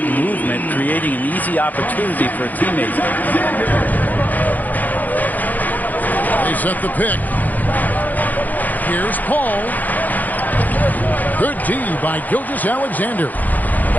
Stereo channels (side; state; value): right; late; 0.082 ms